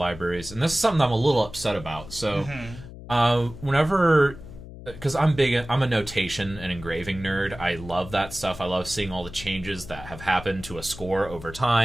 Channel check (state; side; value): noise; left; hum, 14 dB below the sound